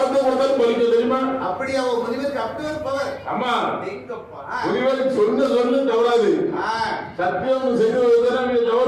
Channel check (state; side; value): identical; both; correlation 1.00